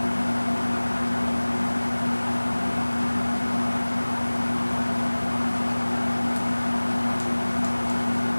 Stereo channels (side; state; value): both; inverted; correlation -1.00